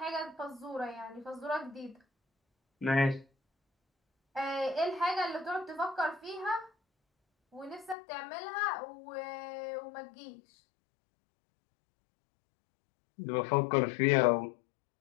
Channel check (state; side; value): drops out; right; at 8.0 s